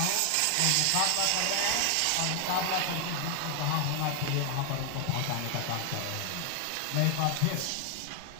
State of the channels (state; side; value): different; both; correlation 0.00